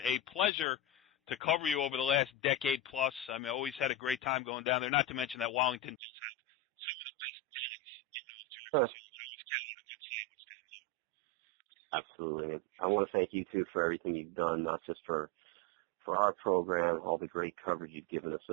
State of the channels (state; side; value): drops out; left; at 6.0 s